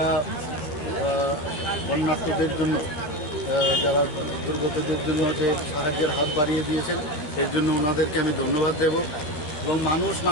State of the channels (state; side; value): late; right; 13 ms